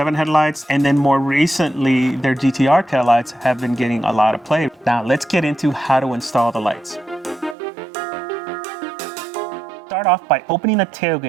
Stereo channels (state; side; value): drops out; left; at 7.6 s